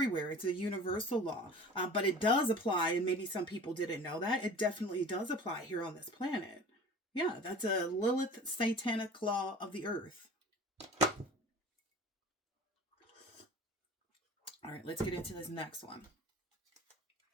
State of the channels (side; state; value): both; normal; correlation 0.41